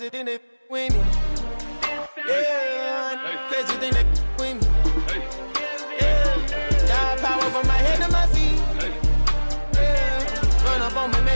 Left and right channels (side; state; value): both; inverted; correlation -1.00